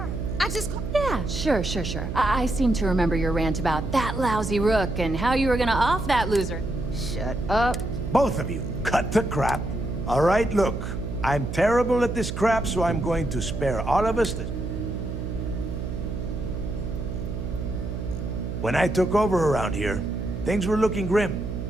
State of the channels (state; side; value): noise; right; hum, 5 dB below the sound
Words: I just... Yeah, sure. I seem to remember your rant about that lousy rook and how you were gonna off that loser. Shut up. Both of you, cut the crap. All right, look. I'm terrible at this crap, so I'm going to spare all of us this. When I took over around here, things were looking grim.